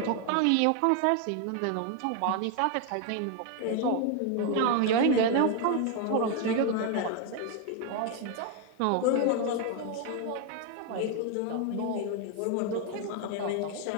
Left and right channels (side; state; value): both; different; correlation 0.01